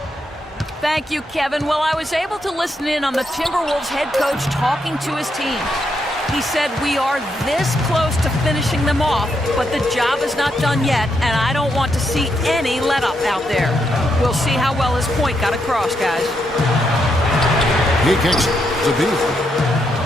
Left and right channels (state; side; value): normal; both; correlation 0.80